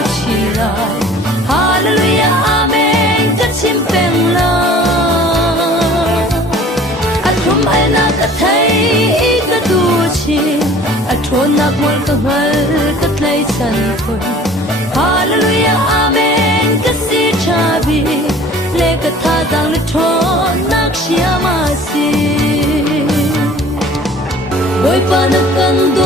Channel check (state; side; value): normal; both; correlation 0.48